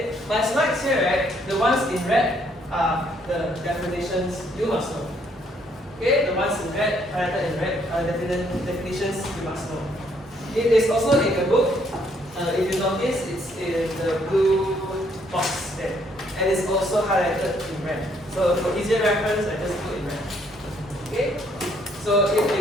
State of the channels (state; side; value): normal; both; correlation 0.68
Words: my slides here, right, the ones in red are the definitions you must know. Okay, the ones in red, highlighted in red, definitions you must know. It is also in the book. If you notice, it's in the blue box there, and it's also highlighted in red. So for easier reference, I just put in red. Okay, so if